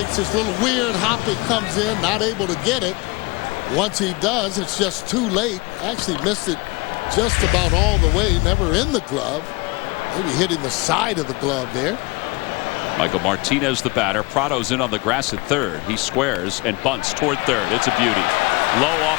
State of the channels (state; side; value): quieter; right; 25.6 dB